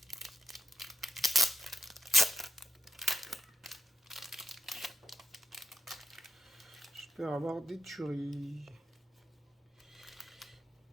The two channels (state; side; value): normal; both; correlation 0.82